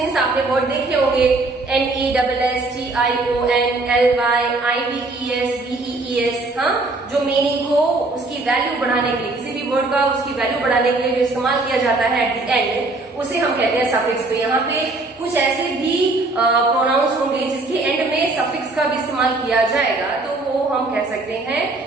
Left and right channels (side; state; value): left; quieter; 3.2 dB